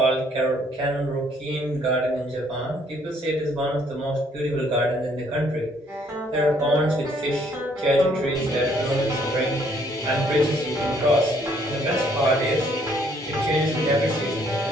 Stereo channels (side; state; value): both; normal; correlation 0.65